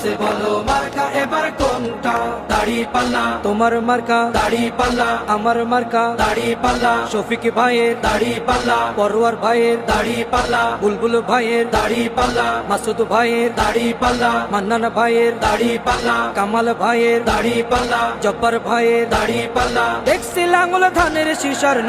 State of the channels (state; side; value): identical; both; correlation 1.00